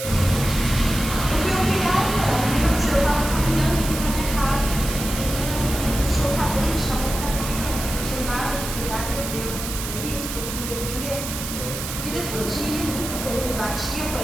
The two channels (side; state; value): right; noise; hiss, 7 dB below the sound